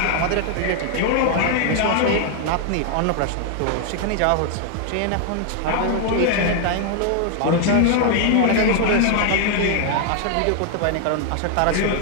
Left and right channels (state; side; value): different; both; correlation 0.00